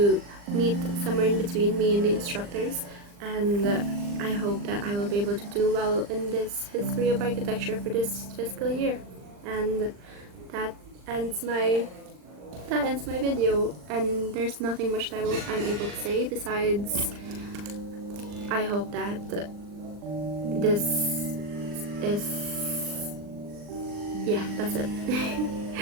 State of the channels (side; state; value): left; late; 39 ms